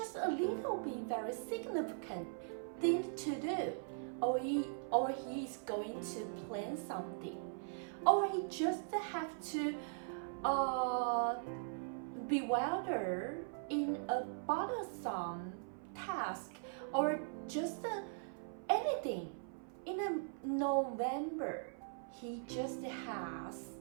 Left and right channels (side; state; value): left; silent; 51 dB below the other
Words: a little bit very significant thing to do, or he is going to plan something, or he just have to bewilder in a bothersome task, or just anything. In November, he just has